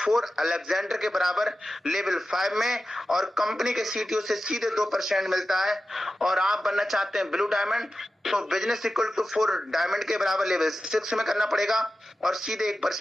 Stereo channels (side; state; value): both; normal; correlation 0.93